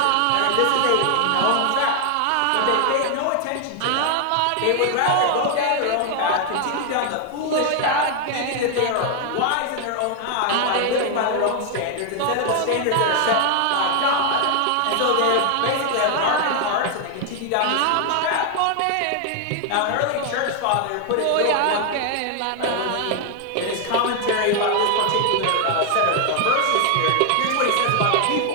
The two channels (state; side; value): different; both; correlation 0.00